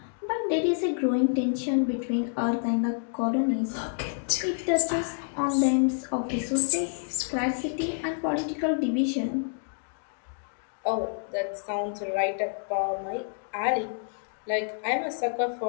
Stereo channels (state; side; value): silent; right; digital silence